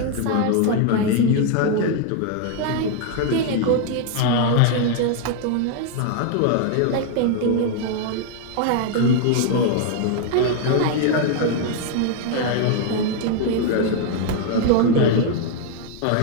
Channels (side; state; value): both; different; correlation 0.00